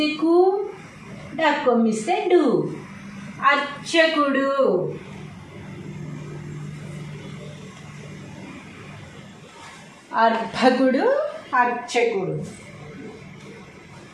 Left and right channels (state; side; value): identical; both; correlation 1.00